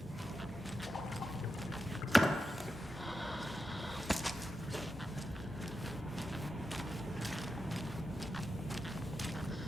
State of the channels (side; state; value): both; normal; correlation 0.89